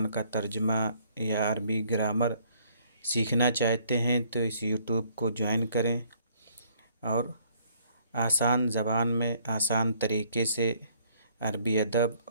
کا ترجمہ یا عربی گرامر سیکھنا چاہتے ہیں تو اس یوٹیوب کو جوائن کریں اور آسان زبان میں آسان طریقے سے عربی ادب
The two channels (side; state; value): both; inverted; correlation -0.63